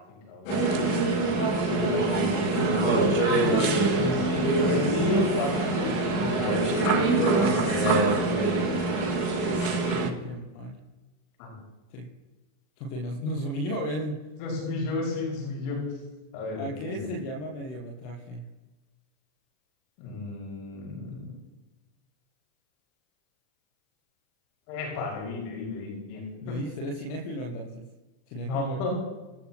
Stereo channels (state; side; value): late; right; 40 ms